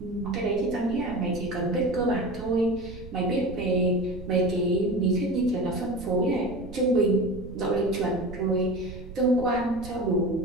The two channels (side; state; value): right; noise; rumble, 14 dB below the sound